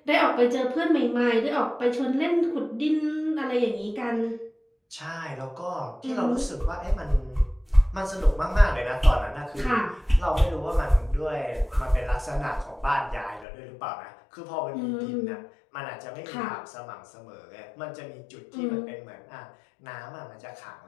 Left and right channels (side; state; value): right; drops out; at 13.5 s